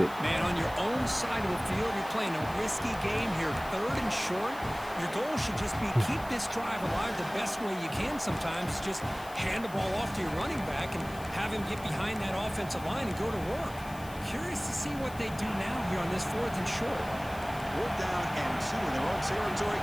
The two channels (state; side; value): noise; left; hiss, 19 dB below the sound